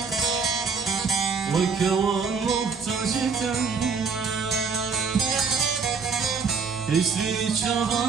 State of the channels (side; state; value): left; quieter; 5.3 dB